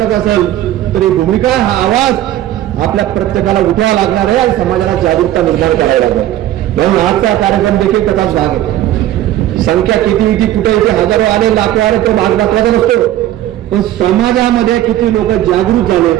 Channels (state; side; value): quieter; left; 13.3 dB